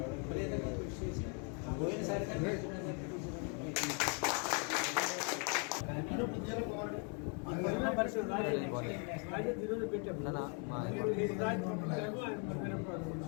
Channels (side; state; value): right; quieter; 38.2 dB